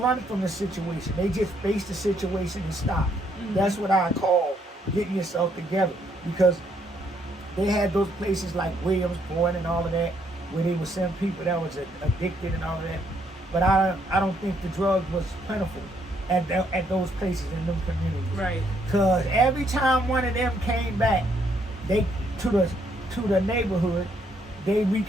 from the situation. They just faced the situation and stopped. That's what I call getting yourself together, because they had those places like Williamsport and all of that, where they would send people that was addicted and all of that. But I don't think the drug was plentiful at those places in them communities. Right. Because every time one of them came back, they to the neighborhood, they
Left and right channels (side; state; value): both; normal; correlation 0.71